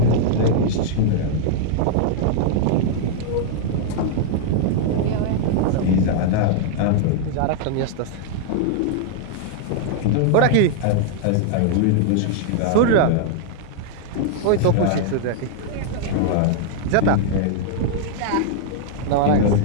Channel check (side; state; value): both; different; correlation -0.01